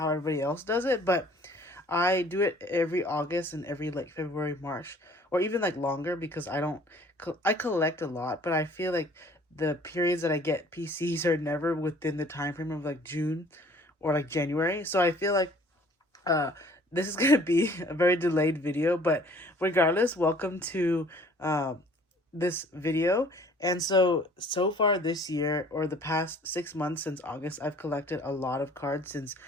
everybody else does it, but I do it every August and every like February, March, or even like longer because I collect a lot, but I feel like the periods that I get PCs are never within the time frame of like June or like January. So I feel like uh this is gonna be a very delayed video, but regardless, welcome to this video. And so far this year, or the past 6 months since August, I've collected a lot of cards since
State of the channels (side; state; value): both; normal; correlation 0.54